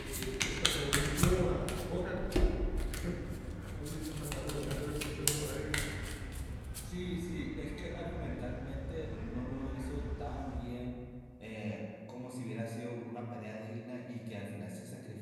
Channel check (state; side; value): identical; both; correlation 1.00